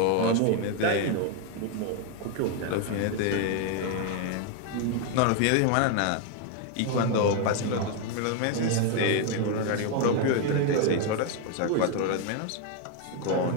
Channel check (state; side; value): different; both; correlation 0.01